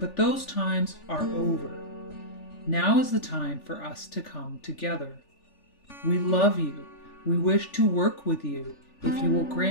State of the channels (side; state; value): right; late; 3.4 ms